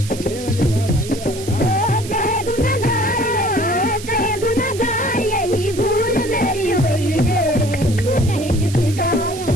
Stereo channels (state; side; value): noise; right; hiss, 13 dB below the sound